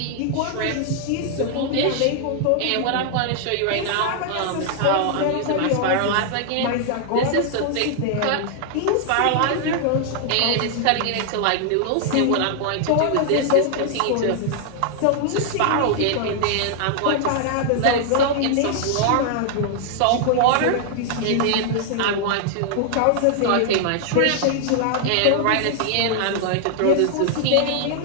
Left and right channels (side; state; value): both; different; correlation 0.00